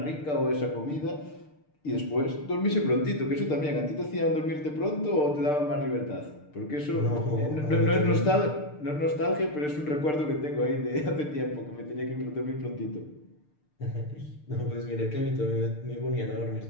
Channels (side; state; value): right; late; 6.7 ms